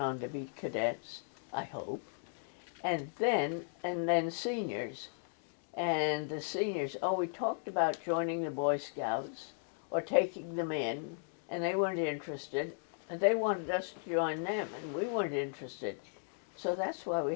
on to be cadets, I hope. And then seniors. And the seniors, we talked about joining the Boy Scouts or taking them in, and they weren't interested. And they wanted us to join them, and we weren't interested. So that's why we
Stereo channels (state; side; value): silent; right; digital silence